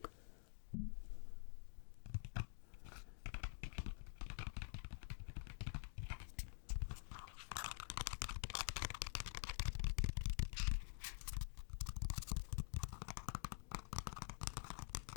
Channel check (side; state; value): right; silent; digital silence